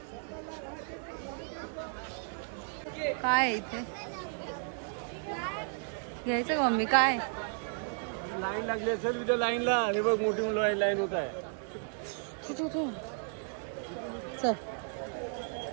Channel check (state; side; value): silent; left; 55 dB below the other